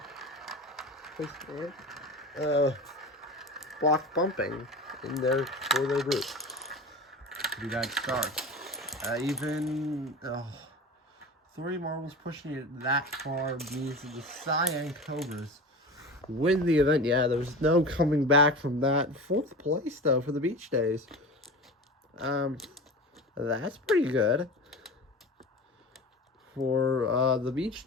Block bumping in there for their group. Pretty bad start. Even 3 marbles pushing it that far means that the Cyan Cobras win the event. Yeah, there's no coming back from that. 4th place, though, for the Beach Days. That's pretty good for the Beach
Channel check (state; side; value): normal; both; correlation 0.32